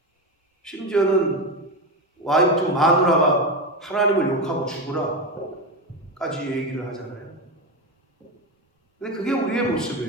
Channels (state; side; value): normal; both; correlation 0.16